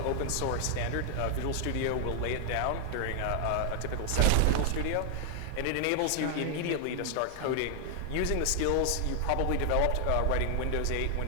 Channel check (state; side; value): different; both; correlation 0.00